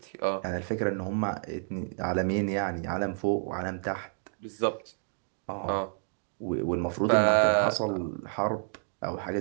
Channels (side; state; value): left; silent; 58 dB below the other